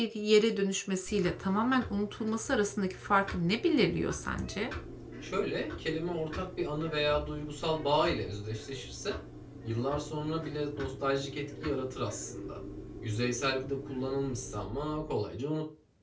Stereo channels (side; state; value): both; identical; correlation 1.00